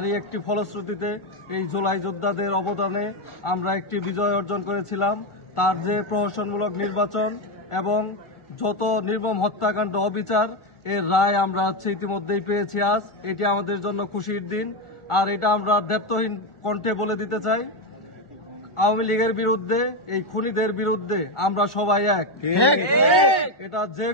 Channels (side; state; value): right; late; 1.4 ms